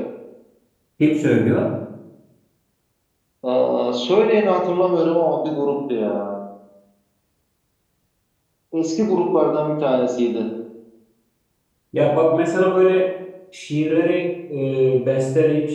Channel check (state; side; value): identical; both; correlation 1.00